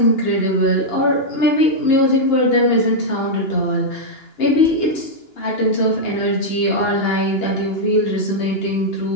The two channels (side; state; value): right; late; 2.9 ms